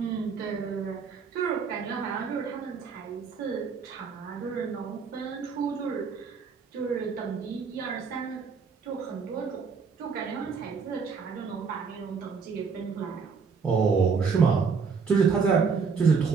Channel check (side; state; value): left; quieter; 5.5 dB